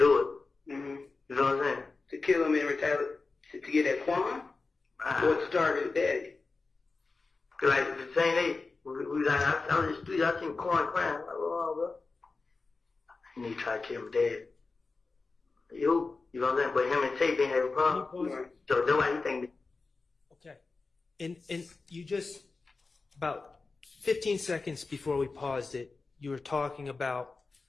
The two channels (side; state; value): right; quieter; 4.0 dB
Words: it. Mm-hmm. You know what I'm saying? To kill him and retaliate, to get that Quan? Or to target his daddy? Cause like the same day, we like, I was in the street, I seen Quan crying. I'm like, oh, bro. And he tried to kill my dad. You know what I'm saying? But him and Tate didn't have a problem. Right. So that's why he think. Okay. And you just, about 15 seconds before we paused it, you were talking about